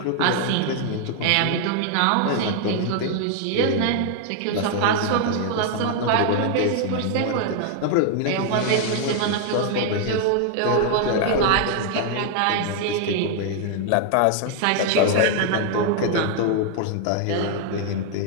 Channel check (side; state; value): both; different; correlation 0.00